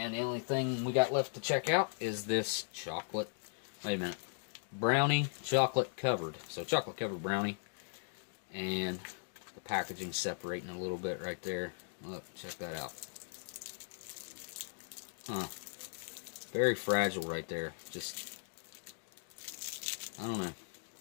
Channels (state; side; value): silent; right; digital silence